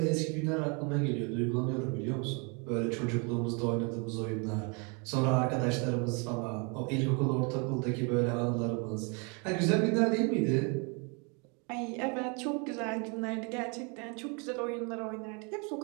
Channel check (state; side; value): quieter; left; 33.5 dB